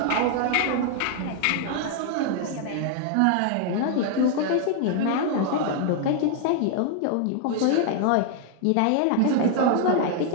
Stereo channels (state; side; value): different; both; correlation 0.00